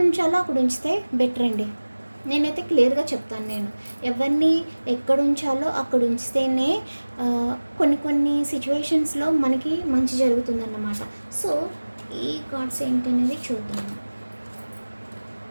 ఉంచాలో అక్కడ ఉంచితే బెటర్ అండి. నేనైతే క్లియర్గా చెప్తాను. నేను ఎవరిని ఎక్కడ ఉంచాలో అక్కడ ఉంచితేనే కొన్ని సిచ్యువేషన్స్లో మనకి మంచి జరుగుతుందన్నమాట. సో ఈ కార్డ్స్ ఏంటనేది చూద్దాము.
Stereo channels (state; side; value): inverted; both; correlation -1.00